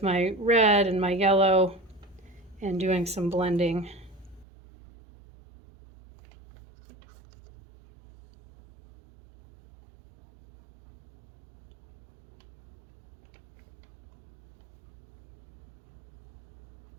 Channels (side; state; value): left; drops out; at 4.5 s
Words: my red and my yellow and doing some blending.